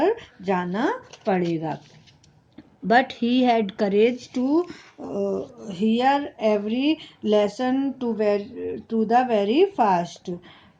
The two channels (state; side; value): identical; both; correlation 1.00